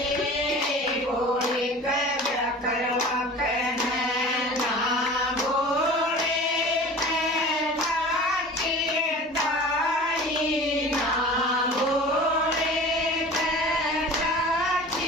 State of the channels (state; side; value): normal; both; correlation 0.40